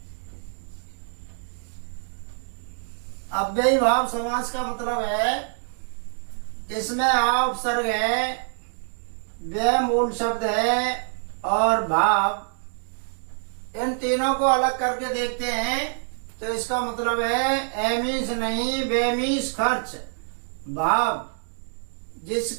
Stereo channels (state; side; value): silent; left; digital silence